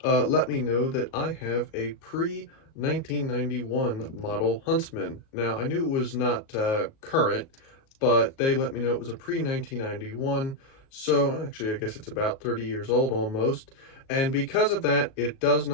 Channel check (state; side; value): late; right; 37 ms